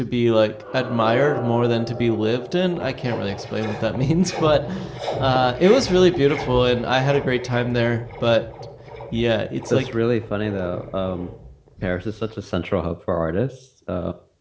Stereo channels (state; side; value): identical; both; correlation 1.00